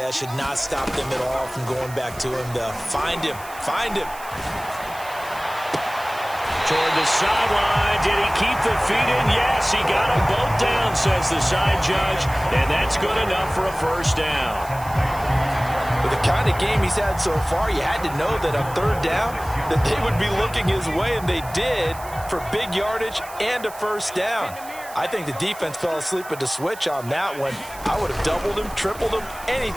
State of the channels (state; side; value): noise; right; hiss, 17 dB below the sound